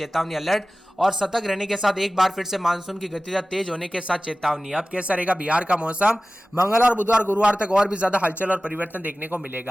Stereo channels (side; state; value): both; normal; correlation 0.97